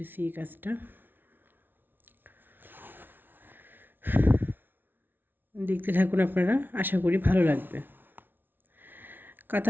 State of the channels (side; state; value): left; late; 0.096 ms